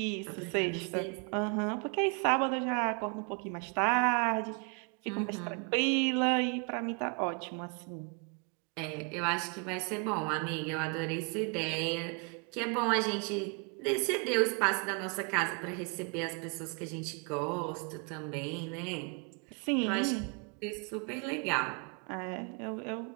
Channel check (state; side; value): quieter; left; 36.0 dB